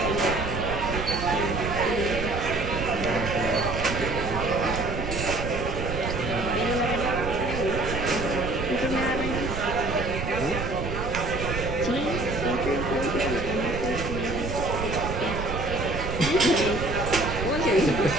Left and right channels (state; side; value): noise; right; rumble, 5 dB below the sound